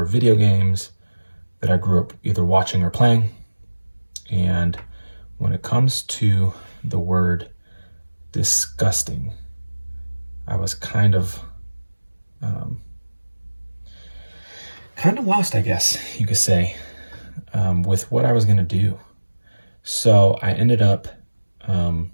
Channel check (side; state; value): both; inverted; correlation -1.00